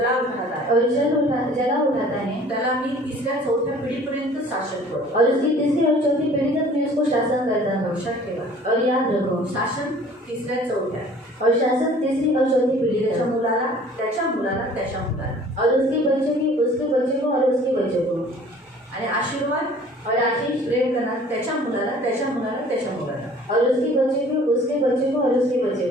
उठाता और जला उठाता है त्याला मी 3-4 पिढीपर्यंत शासन करतो. और उसकी तीसरी और चौथी पीढ़ी तक मैं उसको शासन करता हूँ. लक्षात ठेवा, और याद रखो, शासन 3-4 और शासन तीसरी और चौथी पीढ़ी त्याच्या तक. मुलाला, त्याच्या मुलाला, त्याच्या मुलाला. और उसके बच्चे की उसके बच्चे को और उसके बच्चे को. आणि आशीर्वाद और आशीष प्रेम करणार त्याच्या मुलाला, त्याच्या मुलाला, त्याच्या मुलाला. और उसके बच्चे को उसके बच्चे को और उसके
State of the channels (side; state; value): both; normal; correlation 0.50